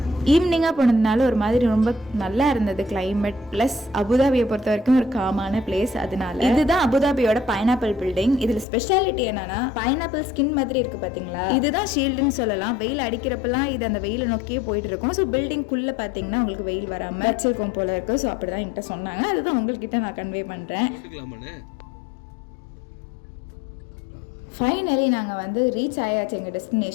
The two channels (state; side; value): drops out; right; at 8.7 s